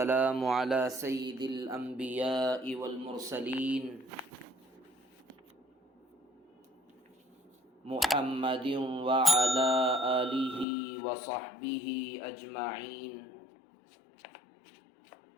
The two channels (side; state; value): right; drops out; at 10.7 s